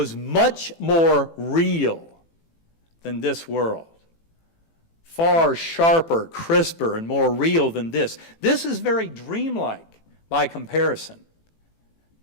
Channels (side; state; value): right; late; 18 ms